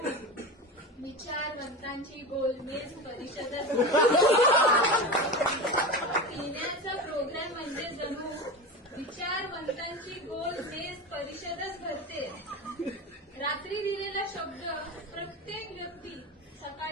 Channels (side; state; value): both; normal; correlation 0.25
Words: विचारवंतांची गोलमेज परिषदच. पिण्याचा प्रोग्राम म्हणजे जणू विचारवंतांची गोलमेज परिषदच भरते. रात्री दिलेला शब्द प्रत्येक व्यक्ती